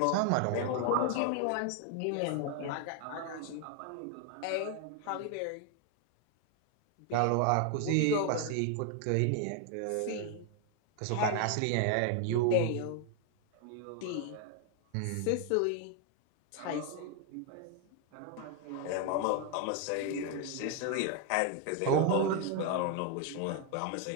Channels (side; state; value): both; different; correlation 0.00